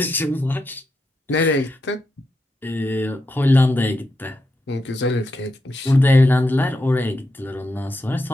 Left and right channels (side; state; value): both; normal; correlation 0.85